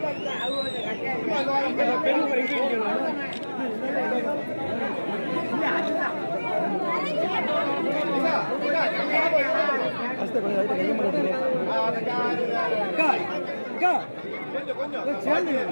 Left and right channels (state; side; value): inverted; both; correlation -1.00